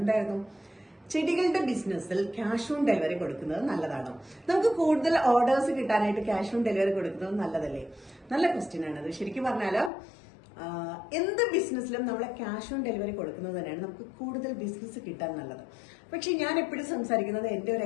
എന്തായിരുന്നു? ചെടികളുടെ ബിസിനസ്സിൽ ക്യാഷ് ഓൺ ഡെലിവറി കൊടുക്കുന്നത് നല്ലതാണോ? നമുക്ക് കൂടുതൽ ഓർഡേഴ്സ് കിട്ടാനായിട്ട് ക്യാഷ് ഓൺ ഡെലിവറി കൊടുക്കുന്നത് നല്ലതല്ലേ? നല്ല ക്വസ്റ്റ്യൻ ആണത്. ശരിക്കും പറഞ്ഞാല് എന്ത് ബിസിനസ്സിലും നമ്മളെ ക്യാഷ് ഓൺ ഡെലിവറി കൊടുക്കുന്നത് തന്നെയാണ് നമുക്ക് കൂടുതൽ ബിസിനസ് കിട്ടാൻ നല്ലത്. പക്ഷെ ഞാൻ എപ്പോഴും സംസാരിക്കുന്നത് എന്റെ ഒരു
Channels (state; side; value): drops out; right; at 9.9 s